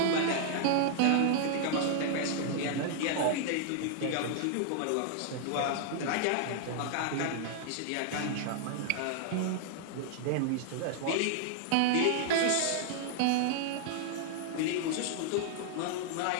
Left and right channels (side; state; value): both; different; correlation 0.00